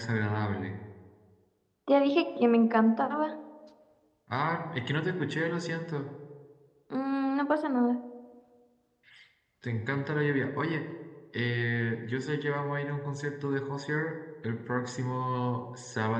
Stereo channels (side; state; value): both; identical; correlation 1.00